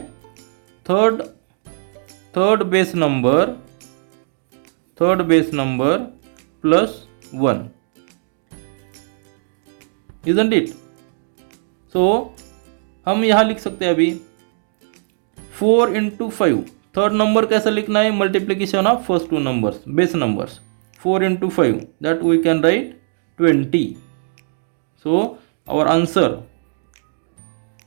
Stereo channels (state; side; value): silent; left; digital silence